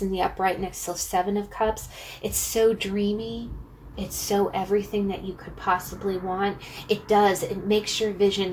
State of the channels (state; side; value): identical; both; correlation 1.00